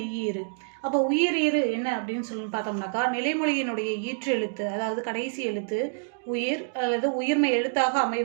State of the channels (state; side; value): silent; left; digital silence